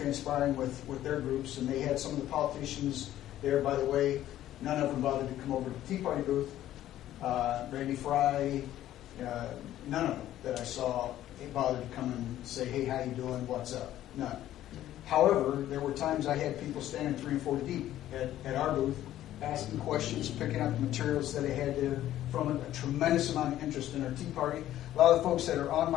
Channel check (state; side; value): quieter; right; 13.0 dB